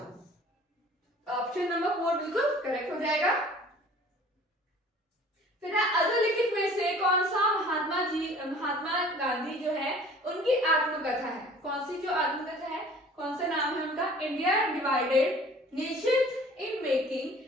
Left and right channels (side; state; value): both; normal; correlation 0.49